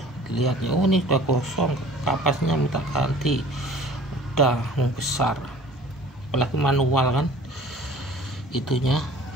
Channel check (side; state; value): both; normal; correlation 0.47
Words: dilihatnya. Oh ini sudah kosong, kapasnya minta ganti, udah besar, apalagi manual kan itunya,